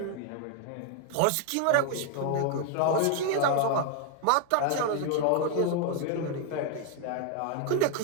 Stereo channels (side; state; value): both; different; correlation 0.00